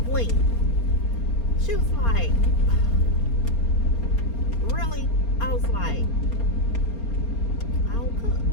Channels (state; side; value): late; right; 4.3 ms